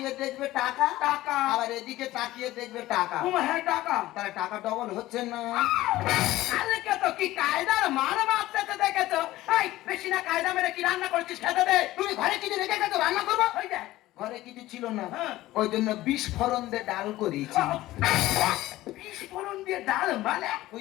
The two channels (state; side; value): quieter; right; 16.5 dB